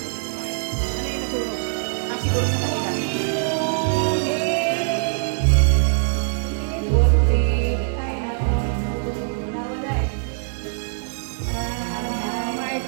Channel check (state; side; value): silent; left; digital silence